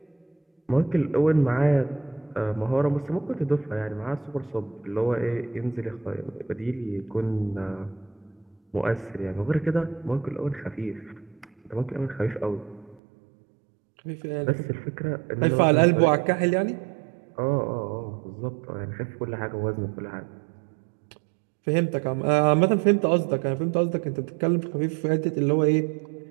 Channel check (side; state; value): left; drops out; at 13.0 s